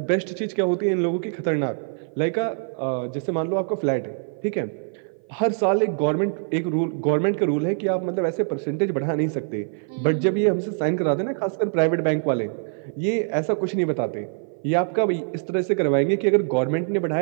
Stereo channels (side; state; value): left; silent; 56 dB below the other